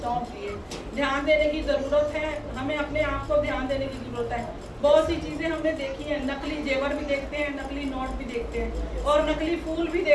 दिए। ध्यान देने की जरूरत है, हमें अपने आप को ध्यान देने की जरूरत है। बहुत सी चीजें हमने देखी हैं, नकली जेवर भी देखते हैं, नकली नोट भी देखते हैं और नकली फूल भी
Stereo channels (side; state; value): both; identical; correlation 1.00